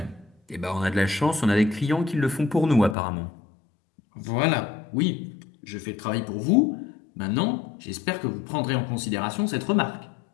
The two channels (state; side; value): drops out; right; at 3.0 s